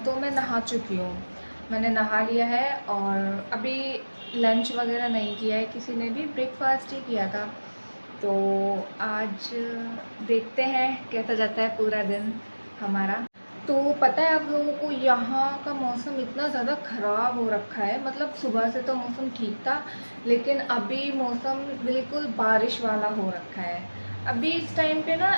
तो मैं नहा चुकी हूँ, मैंने नहा लिया है और अभी लंच वगैरह नहीं किया है किसी ने भी, ब्रेकफास्ट ही किया था। तो आज देखते हैं कैसा जाता है पूरा दिन हमारा। तो पता है आप लोगों को, यहाँ का मौसम इतना ज़्यादा ख़राब हो रखा है। मतलब सुबह से तो मौसम ठीक था, लेकिन अभी मौसम बिल्कुल बारिश वाला हो रखा है। अभी इस टाइम पे ना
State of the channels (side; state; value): both; inverted; correlation -1.00